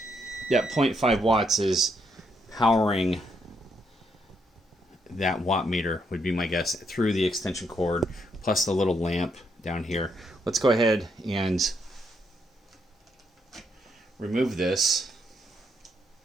Yeah, 0.5 watts is powering that watt meter, would be my guess, through the extension cord plus the little lamp down here. Let's go ahead and remove this.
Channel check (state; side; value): normal; both; correlation 0.76